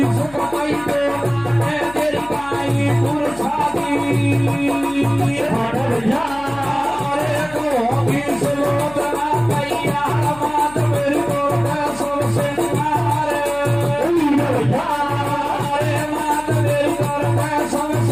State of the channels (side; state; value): left; noise; hum, 20 dB below the sound